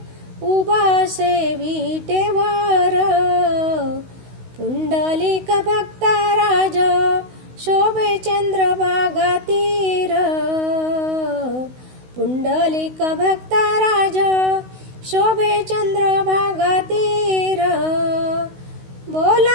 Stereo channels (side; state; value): left; late; 16 ms